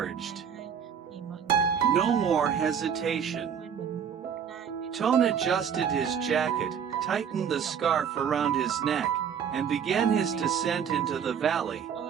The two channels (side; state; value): left; quieter; 7.7 dB